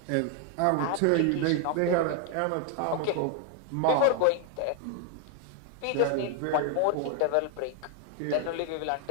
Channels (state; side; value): different; both; correlation 0.00